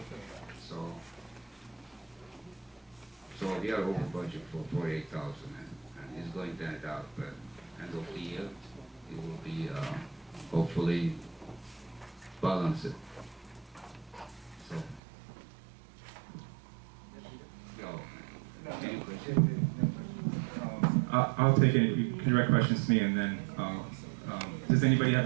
So we are over budget for $48,000, and it's going to end out at end of the year. It will be hopefully balanced. So, any questions? I'll take it. You can direct questions to me, and then does anybody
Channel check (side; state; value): left; drops out; at 15.0 s